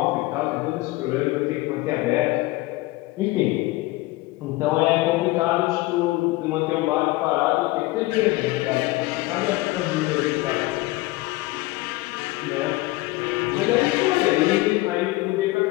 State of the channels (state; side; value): quieter; right; 20.0 dB